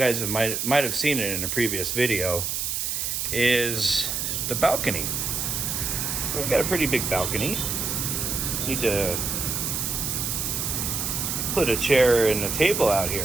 might have seen it in a previous video, is the balcony. So we've got a pretty big balcony. Need to put a chair and a table out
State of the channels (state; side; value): noise; right; hiss, 1 dB below the sound